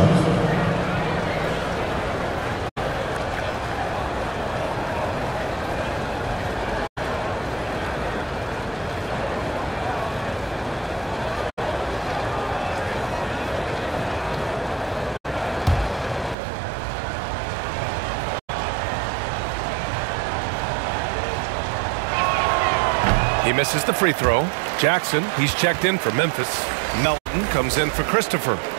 He misses the free throw. Jackson, he's checked in for Memphis. Melton comes in for Christopher.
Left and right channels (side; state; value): left; drops out; at 16.4 s